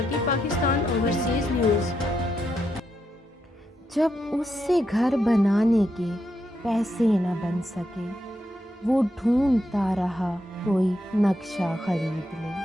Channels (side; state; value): both; normal; correlation 0.82